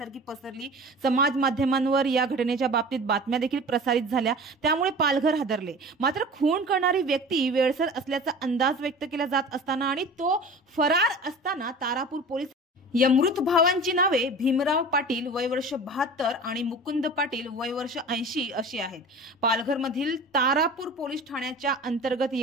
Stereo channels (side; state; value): both; normal; correlation 0.38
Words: पसरली। समाज माध्यमांवर या घटनेच्या बाबतीत बातम्या देखील प्रसारित झाल्या, त्यामुळे पालघर हादरले। मात्र खून करणारी व्यक्ती वेळसर असल्याचा अंदाज व्यक्त केला जात असताना आणि तो फरार असताना तारापूर पोलीस या मृत भावांची नावे भीमराव पाटील वय वर्ष 72 आणि मुकुंद पाटील वय वर्ष 80 अशी आहेत। पालघर मधील तारापूर पोलीस ठाण्याच्या अंतर्गत